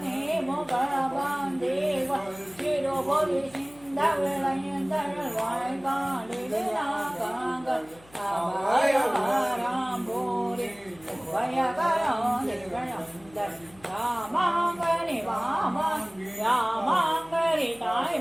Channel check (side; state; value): left; noise; hum, 25 dB below the sound